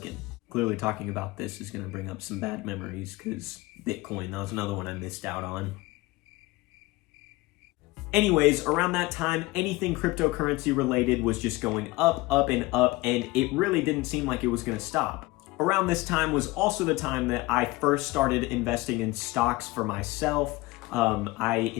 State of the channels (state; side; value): quieter; right; 21.0 dB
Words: Clearly talking about this is going to bring up some bad memories because Bitcoin, that was another one I missed out on. Anyways, around that time, anything cryptocurrency related was just going up, and it really didn't seem like it was going to stop. Around this time was also the time that I first started investing in stocks for myself. I